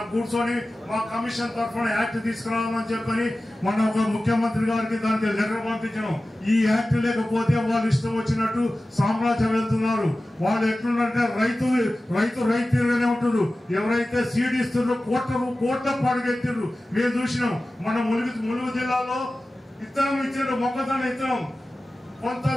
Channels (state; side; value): normal; both; correlation 0.96